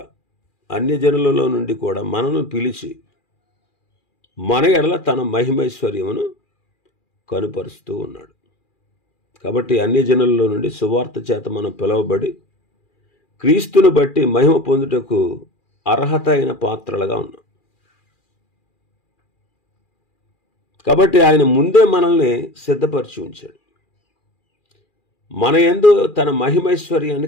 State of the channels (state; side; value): late; right; 2.4 ms